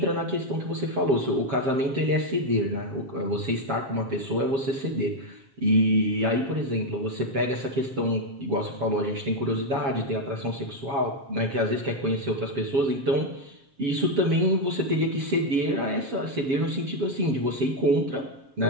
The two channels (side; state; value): left; late; 7.4 ms